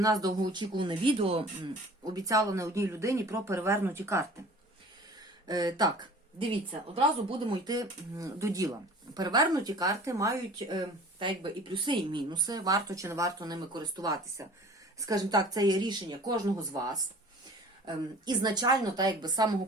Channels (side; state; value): both; normal; correlation 0.45